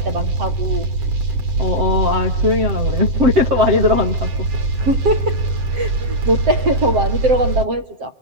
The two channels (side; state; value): left; late; 7.7 ms